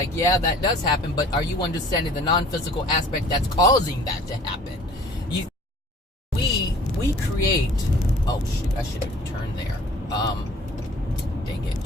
yeah, that does happen, but are you understanding the non-physical aspect that's causing that to happen? We create... Oh, shoot, I should have turned there. Dang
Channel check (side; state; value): both; normal; correlation 0.50